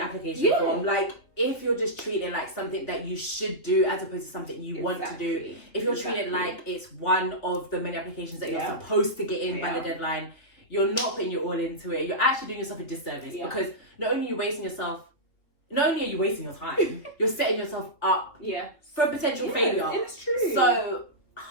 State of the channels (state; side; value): late; right; 3.2 ms